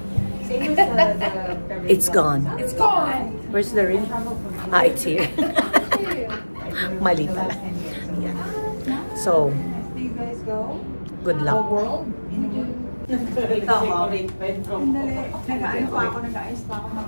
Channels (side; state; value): both; inverted; correlation -1.00